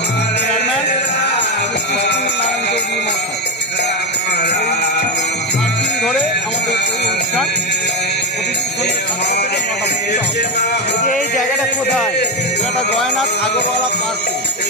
চেয়ারম্যান নারায়ণ চৌধুরী মহাশয়। 7 দিন ধরে আমাদের এই অনুষ্ঠান এই জায়গাটা কোথায়? এটা জয়নাথ আগরওয়ালা পার্কে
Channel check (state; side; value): normal; both; correlation 0.10